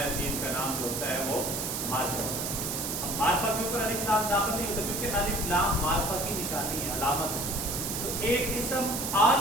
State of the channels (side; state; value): right; noise; hiss, 3 dB below the sound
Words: چیز کا نام جو ہوتا ہے وہ معرفہ ہوتا ہے. اب معرفہ کے اوپر الف لام داخل نہیں ہوتا کیونکہ الف لام معرفہ کی نشانی ہے، علامت ہے. تو ایک اسم